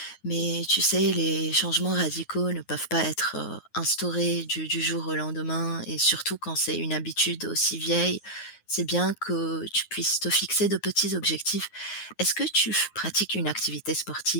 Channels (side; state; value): right; late; 9.5 ms